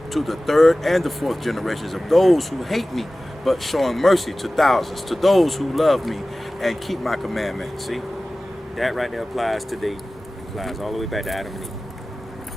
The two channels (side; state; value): both; normal; correlation 0.97